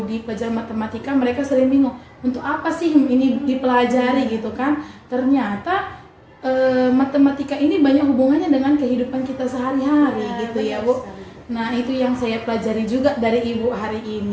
di pelajaran matematika mereka sering bingung, untuk apa sih ini dipelajari gitu kan. Ternyata matematika ini banyak hubungannya dengan kehidupan kita sehari-hari gitu ya Bu. Nah, itu yang saya pelajari juga dari Ibu hari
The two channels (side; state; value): both; identical; correlation 1.00